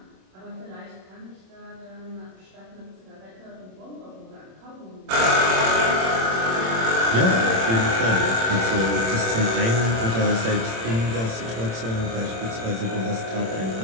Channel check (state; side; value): late; left; 26 ms